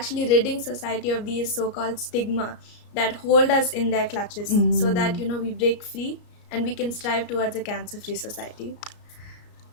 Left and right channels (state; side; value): late; right; 34 ms